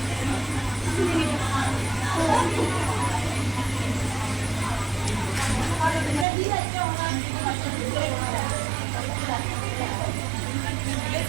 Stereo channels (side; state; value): left; drops out; at 6.2 s